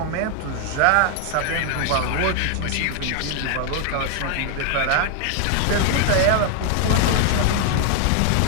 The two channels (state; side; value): different; both; correlation 0.00